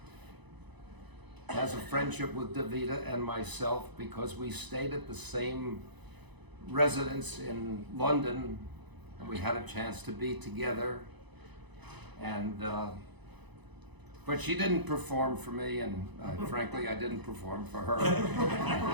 has a friendship with Davida and myself because we stayed at the same residence in London and we had a chance to be together. And but she didn't perform for me, and frankly I didn't perform for her.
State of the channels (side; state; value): left; late; 1.0 ms